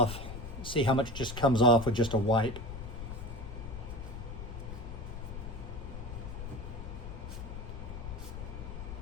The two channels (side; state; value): left; noise; rumble, 8 dB below the sound